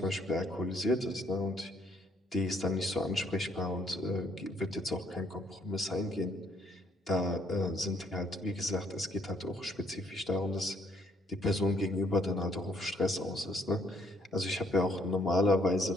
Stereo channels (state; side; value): normal; both; correlation 0.67